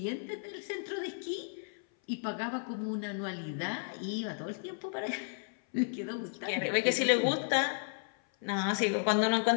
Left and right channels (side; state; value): right; silent; 55 dB below the other